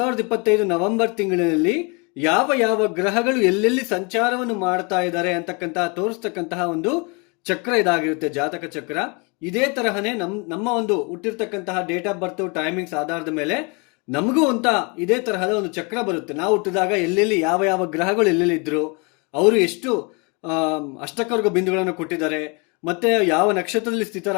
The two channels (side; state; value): right; quieter; 31.5 dB